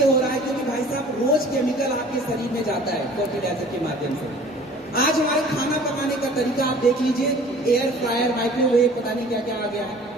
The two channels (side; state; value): both; normal; correlation 0.48